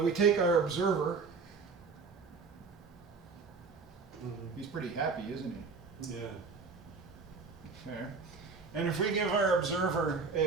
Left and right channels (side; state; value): left; quieter; 4.8 dB